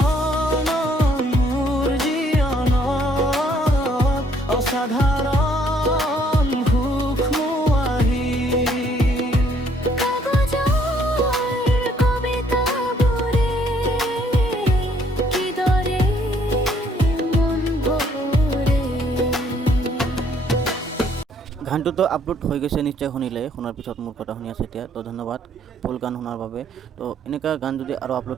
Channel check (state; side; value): normal; both; correlation 0.65